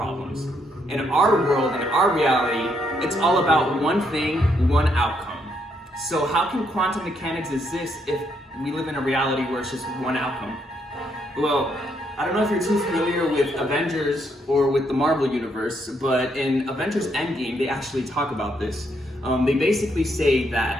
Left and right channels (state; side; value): normal; both; correlation 0.74